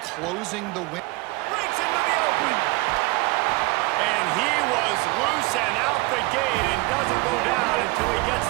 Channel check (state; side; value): quieter; left; 23.5 dB